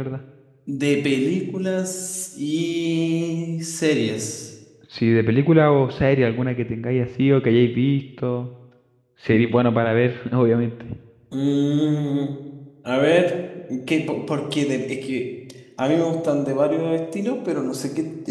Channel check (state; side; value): identical; both; correlation 1.00